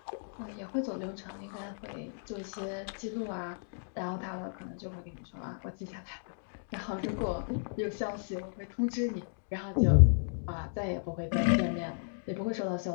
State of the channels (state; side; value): silent; right; digital silence